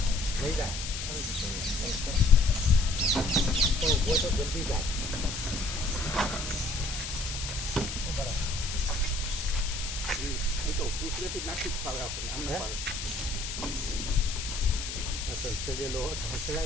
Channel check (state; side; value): noise; left; hiss, 6 dB below the sound